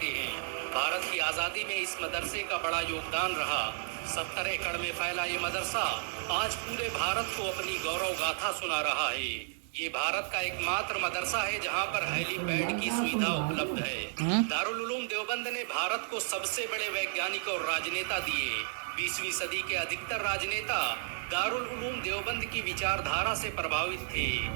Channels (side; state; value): left; silent; 56 dB below the other